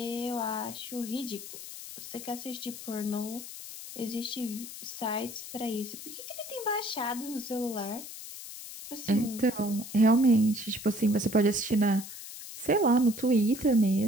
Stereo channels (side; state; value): left; noise; hiss, 12 dB below the sound